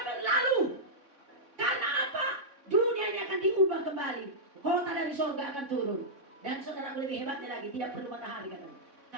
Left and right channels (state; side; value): late; left; 3.6 ms